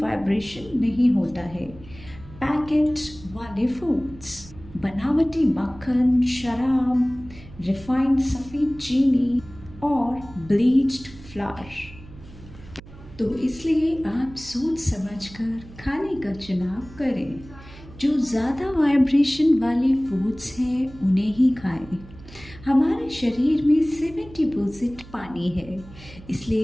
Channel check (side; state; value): right; noise; hum, 19 dB below the sound